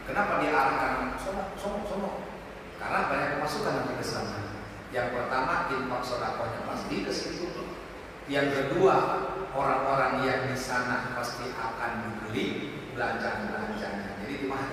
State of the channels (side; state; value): both; identical; correlation 1.00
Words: Kenapa diarahkan sono? Karena banyak pemasukan nanti ke sana. Yang pertama, infak sedekahnya pasti ke situ. Yang kedua, orang-orang yang di sana pasti akan dibeli belanjaan-belanjanya. Jadi itu